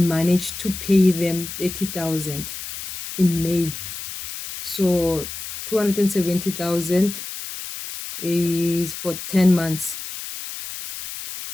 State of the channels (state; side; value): noise; left; hiss, 9 dB below the sound